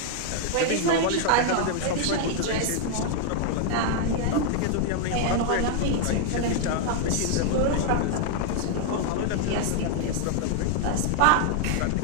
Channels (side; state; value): both; different; correlation 0.00